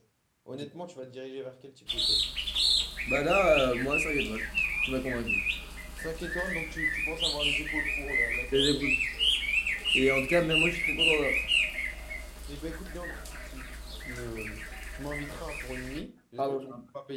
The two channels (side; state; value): both; identical; correlation 1.00